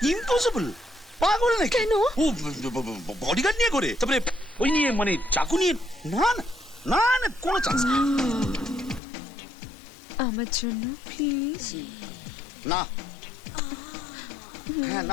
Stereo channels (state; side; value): drops out; right; at 9.0 s